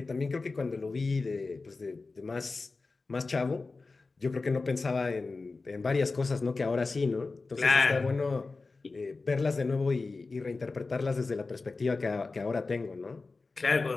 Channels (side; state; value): right; quieter; 3.8 dB